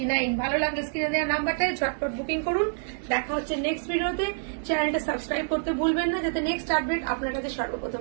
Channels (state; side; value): silent; left; 60 dB below the other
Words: ভালো লাগলে স্ক্রিনে দেওয়া নাম্বারটায় ঝটপট বুকিং করুন। দেখা হচ্ছে নেক্সট ভিডিওতে। চ্যানেলটা সাবস্ক্রাইব করতে ভুলবেন না, যাতে নেক্সট আপডেট আপনার কাছে